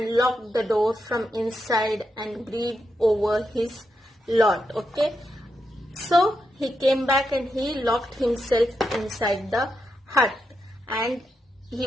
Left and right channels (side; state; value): both; normal; correlation 0.84